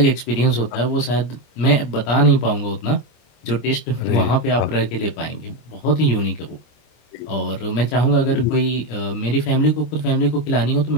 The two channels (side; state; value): right; late; 25 ms